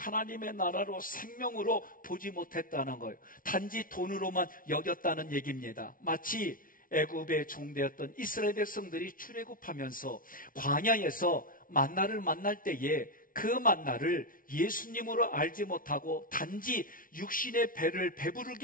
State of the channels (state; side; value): late; right; 0.40 ms